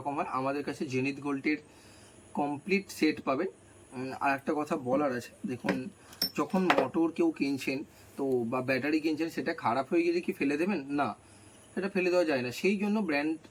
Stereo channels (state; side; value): identical; both; correlation 1.00